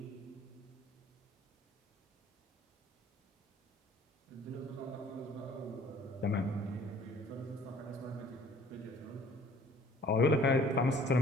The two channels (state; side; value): normal; both; correlation 0.54